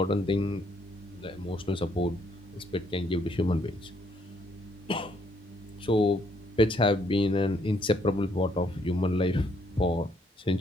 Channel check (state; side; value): normal; both; correlation 0.70